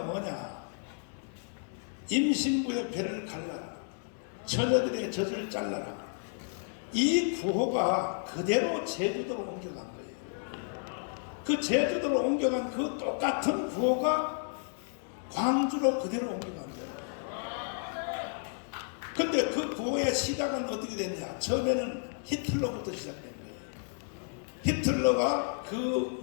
뭐냐, 임신부의 배를 갈라라, 처녀들의 젖을 잘라라. 이 구호가 그대로 제주도로 옮겨간 거예요. 그 제주도로 옮겨간 그 똑같은 구호가 광주로 그대로 옮겨간 거예요. 근데 그 구호의 시작은 어떻게 됐냐, 처음에는 히틀러부터 시작된 거예요. 히틀러가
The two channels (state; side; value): silent; right; 56 dB below the other